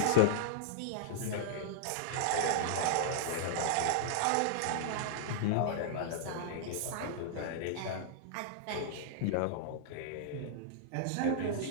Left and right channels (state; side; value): different; both; correlation -0.02